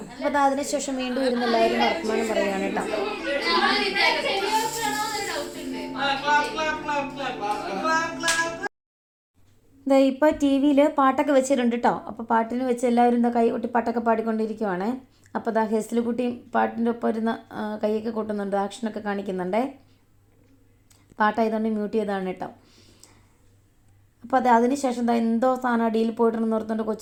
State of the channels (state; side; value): identical; both; correlation 1.00